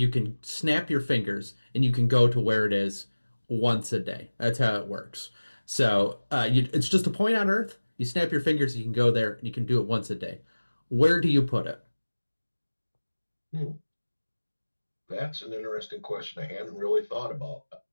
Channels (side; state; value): both; inverted; correlation -1.00